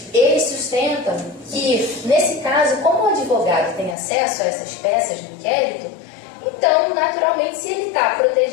ele sustenta que, nesse caso, como o advogado tem acesso a essas peças do inquérito, então, naturalmente, se ele está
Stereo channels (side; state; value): right; drops out; at 4.0 s